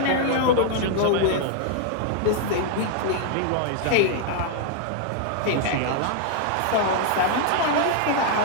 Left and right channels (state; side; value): different; both; correlation 0.00